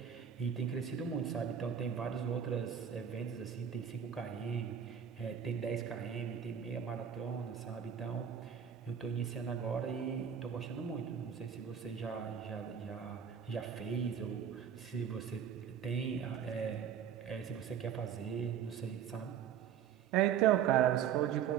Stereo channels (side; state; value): left; quieter; 8.3 dB